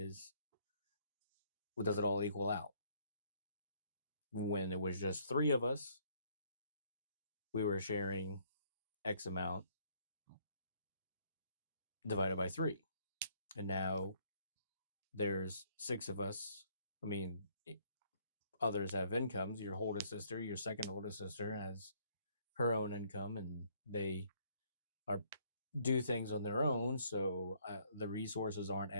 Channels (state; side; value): inverted; both; correlation -0.65